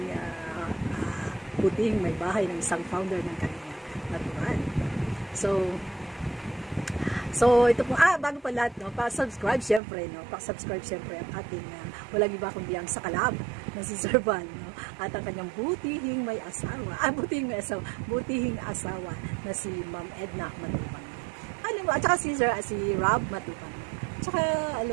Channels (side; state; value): left; drops out; at 9.8 s